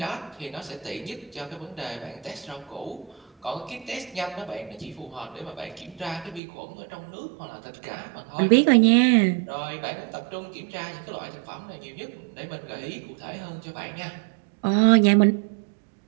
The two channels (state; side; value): drops out; left; at 6.4 s